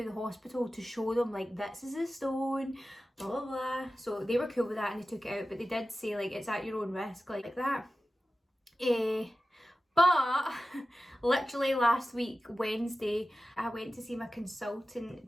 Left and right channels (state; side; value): normal; both; correlation 0.94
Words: the hospital to show them, like, this is a stone, blah blah blah. So they were cool with that and they took it out, but they did say, like, it's at your own risk, like that. But literally last week, Wednesday, I went to see my